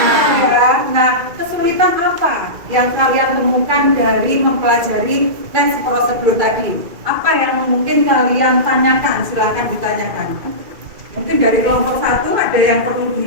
Ya. Nah, kesulitan apa yang kalian temukan dari mempelajari tes prosedur tadi? Apa yang mungkin kalian tanyakan? Silahkan ditanyakan. Mungkin dari kelompok 1 ada yang perlu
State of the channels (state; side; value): late; left; 2.3 ms